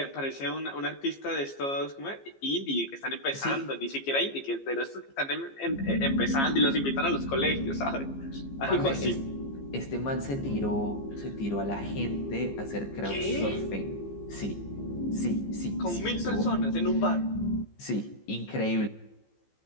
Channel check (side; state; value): right; late; 15 ms